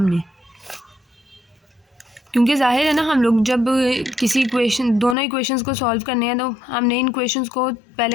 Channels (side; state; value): right; drops out; at 5.2 s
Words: क्योंकि जाहिर है ना, हम लोग जब किसी इक्वेशन, दोनों इक्वेशंस को सॉल्व करने हैं तो हमने इन इक्वेशंस को पहले